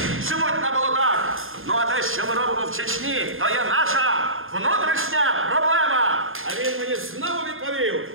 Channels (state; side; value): late; left; 0.60 ms